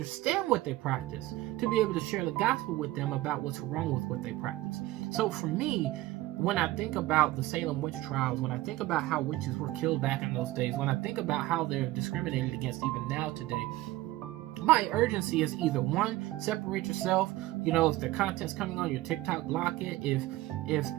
what they practice to be able to share the gospel with them about what's wrong with what they practice. So for me, when I think about the Salem witch trials, when I think about how witches were killed back in those days, when I think about how they're discriminated against even now today, my urgency is either one, separate yourself. You know, if the content's coming on your TikTok, block it. If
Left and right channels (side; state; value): left; quieter; 17.3 dB